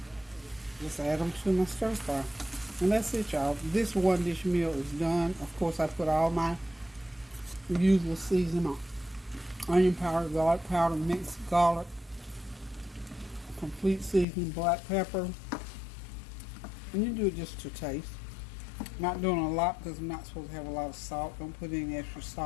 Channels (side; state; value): right; drops out; at 14.2 s